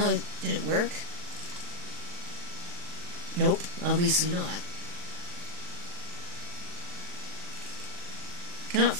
did it work? Nope, obviously not. Cannot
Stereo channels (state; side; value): late; left; 40 ms